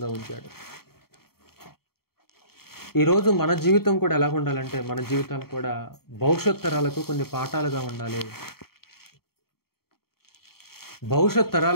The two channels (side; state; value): right; late; 0.94 ms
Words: ఉంచాడు. ఈరోజు మన జీవితం కూడా ఎలా ఉండాలంటే, మన జీవితాలు కూడా భవిష్యత్ తరాలకు కొన్ని పాఠాలుగా ఉండాలి. భవిష్యత్